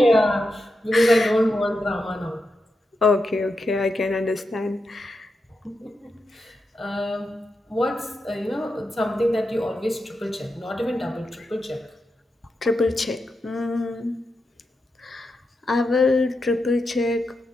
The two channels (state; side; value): normal; both; correlation 0.87